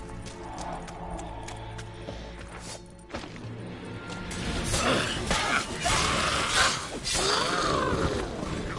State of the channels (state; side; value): identical; both; correlation 1.00